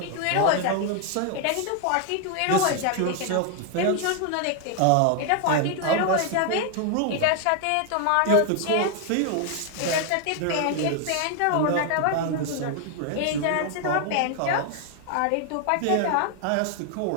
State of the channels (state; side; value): different; both; correlation 0.00